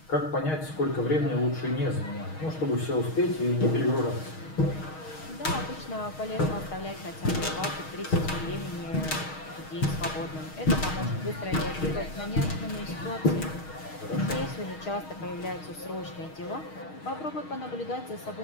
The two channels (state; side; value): late; right; 6.4 ms